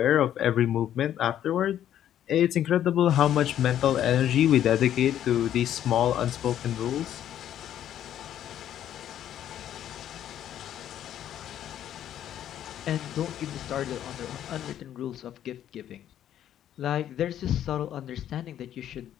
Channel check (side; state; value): right; quieter; 10.9 dB